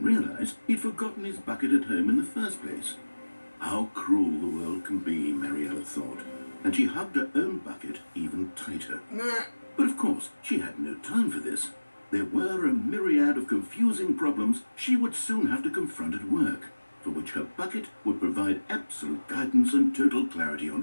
realize he'd forgotten his bucket at home in the first place. How cruel the world can be, Mariella thought, and she hugged her own bucket even tighter. But of course, she had no time for this. There were a myriad of confusing problems she would soon have to confront at work, for which her bucket would provide absolute guidance and total clarity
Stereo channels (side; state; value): both; inverted; correlation -1.00